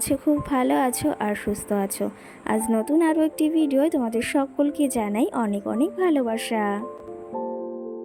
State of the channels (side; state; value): both; identical; correlation 1.00